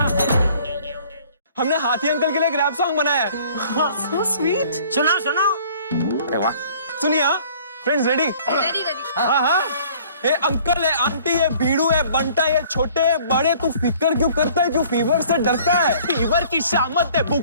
हमने हाथी अंकल के लिए एक रैप सॉन्ग बनाया है। So sweet. सुनाओ सुनाओ। अरे वाह। सुनिए फ्रेंड्स, रेडी? Ready ready. हाँ हाँ। ये अंकल है, आंटी है, बीड़ू है, बंटा है, छोटे है, बड़े, तू फिक्र क्यों करता है? क्यों फीवर से डरता है? फीवर की शामत है,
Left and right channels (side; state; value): both; inverted; correlation -0.54